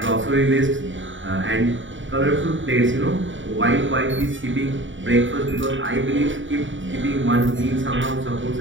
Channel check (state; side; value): late; left; 0.56 ms